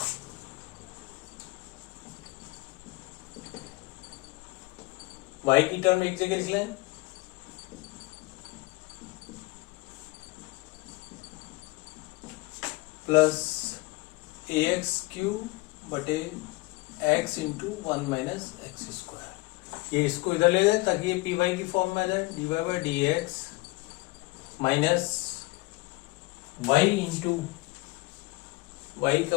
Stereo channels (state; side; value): quieter; right; 22.6 dB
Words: y की टर्म एक जगह लिख लें, प्लस ए एक्स क्यू बटे X into 1 minus x square. ये इसको इधर ले लें ताकि ये पी वाई की फॉर्म में आ जाए। D Y by D X minus Y into Y